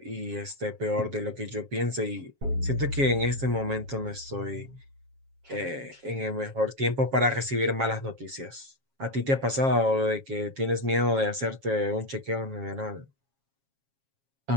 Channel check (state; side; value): late; left; 7.4 ms